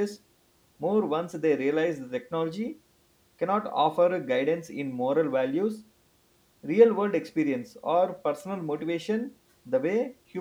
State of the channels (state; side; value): identical; both; correlation 1.00